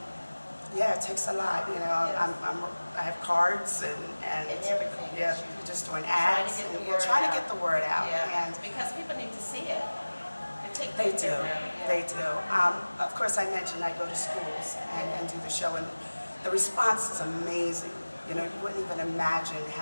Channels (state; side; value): inverted; both; correlation -1.00